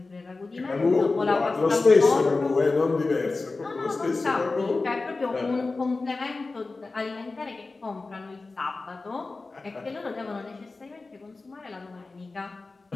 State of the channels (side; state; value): right; quieter; 3.6 dB